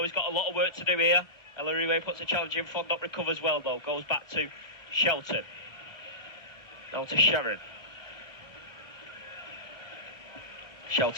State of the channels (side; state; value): right; late; 1.3 ms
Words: He's got a lot of work to do here. Ellery puts a challenge in. Fondop recovers well though. Goes back to Shelton. Now to Sharon.